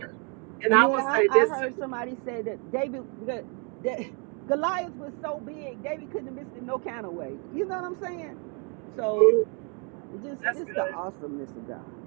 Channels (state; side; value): quieter; left; 36.4 dB